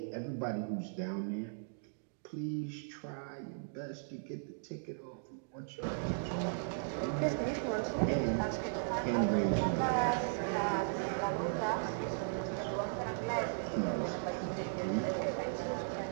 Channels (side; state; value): left; silent; digital silence